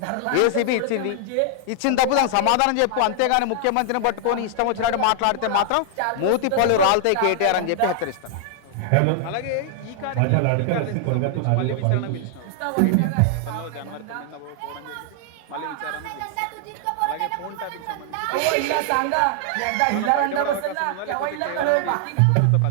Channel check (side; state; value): both; different; correlation -0.01